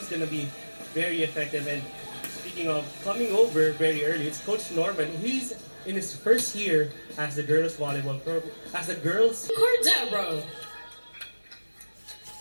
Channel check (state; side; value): inverted; both; correlation -1.00